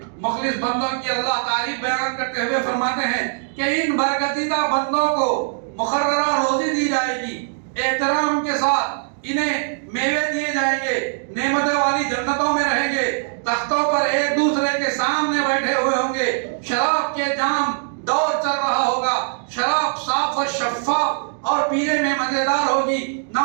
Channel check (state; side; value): silent; left; digital silence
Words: مخلص بندوں کی اللہ تعریف بیان کرتے ہوئے فرماتے ہیں کہ ان برگزیدہ بندوں کو مقررہ روزی دی جائے گی، احترام کے ساتھ انہیں میوے دیے جائیں گے، نعمتیں والی جنتوں میں رہیں گے، تختوں پر ایک دوسرے کے سامنے بیٹھے ہوئے ہوں گے، شراب کے جام دور چل رہا ہوگا، شراب صاف اور شفاف اور پینے میں مزیدار ہوگی، نہ